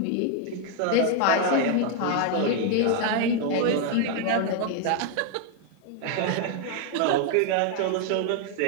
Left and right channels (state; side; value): different; both; correlation 0.01